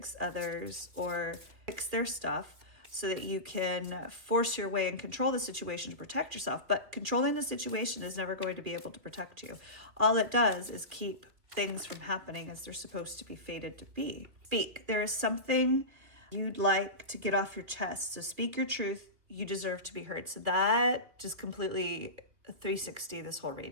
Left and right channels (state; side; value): late; left; 3.1 ms